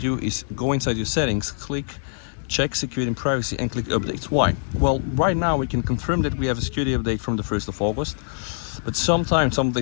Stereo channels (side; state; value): right; silent; digital silence